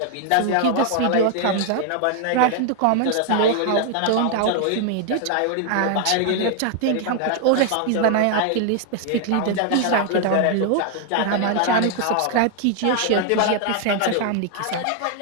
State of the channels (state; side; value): different; both; correlation 0.00